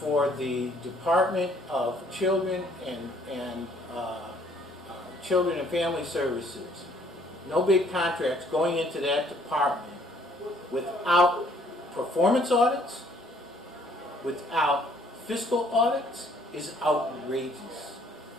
Department of Children and Children and Family Services, no big contracts going into that department without performance audits, without fiscal audits, is outrageous.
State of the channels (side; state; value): both; normal; correlation 0.62